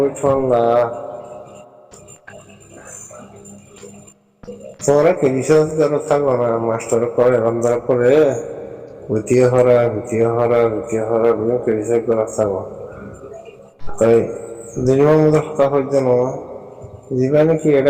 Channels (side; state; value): both; identical; correlation 1.00